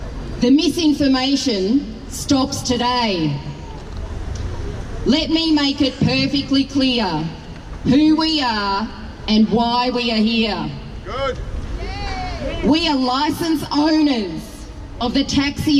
The misinformation stops today. Let me make it perfectly clear who we are and why we are here. Good. We are licence owners of the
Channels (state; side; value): identical; both; correlation 1.00